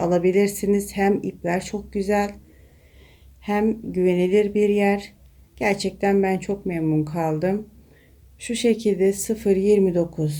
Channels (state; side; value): identical; both; correlation 1.00